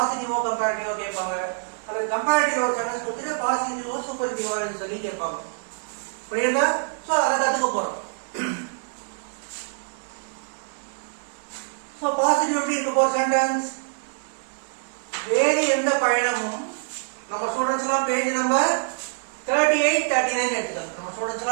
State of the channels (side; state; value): left; silent; 62 dB below the other